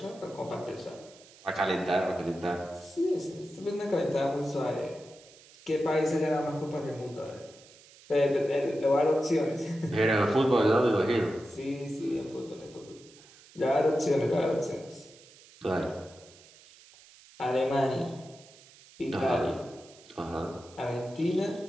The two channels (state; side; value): noise; right; hiss, 23 dB below the sound